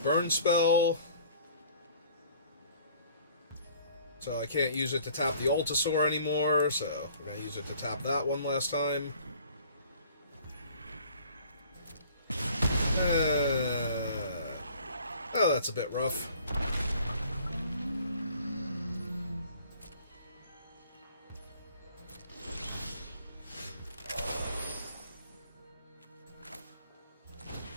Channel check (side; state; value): both; inverted; correlation -0.53